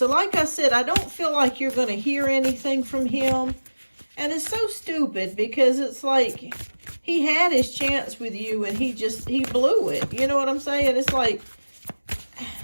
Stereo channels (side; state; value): both; inverted; correlation -1.00